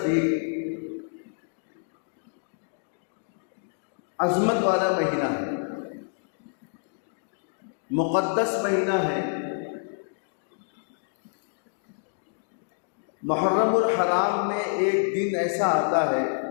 عظمت والا مہینہ ہے، مقدس مہینہ ہے. محرم الحرام میں ایک دن ایسا آتا ہے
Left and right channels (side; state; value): right; silent; digital silence